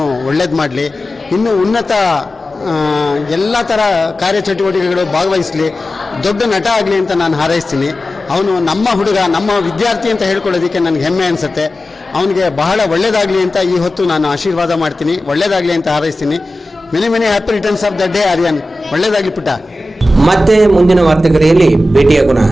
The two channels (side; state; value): both; normal; correlation 0.94